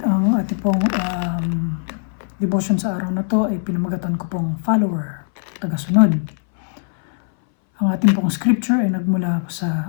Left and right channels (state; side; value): silent; right; 61 dB below the other